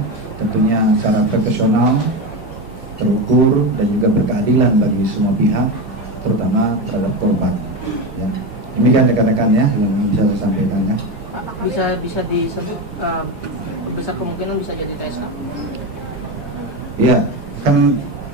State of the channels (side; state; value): both; normal; correlation 0.18